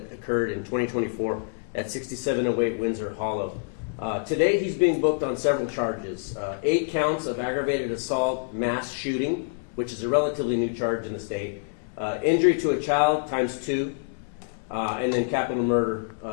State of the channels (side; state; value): right; silent; digital silence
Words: occurred in 2024 at 6708 Windsor Hollow. Today he's being booked on several charges. 8 counts of aggravated assault, mass shooting, which is a relatively new charge in the state, injury to a child ×2, and then capital murder